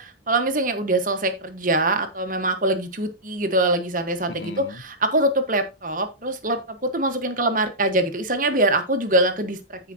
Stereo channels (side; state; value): both; normal; correlation -0.13